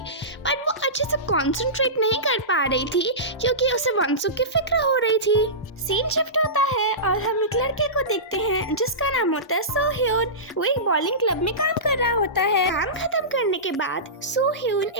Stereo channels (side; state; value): both; normal; correlation -0.20